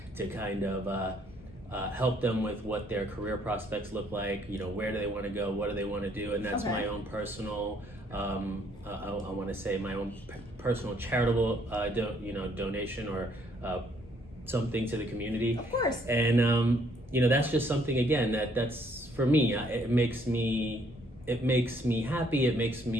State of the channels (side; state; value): both; normal; correlation 0.66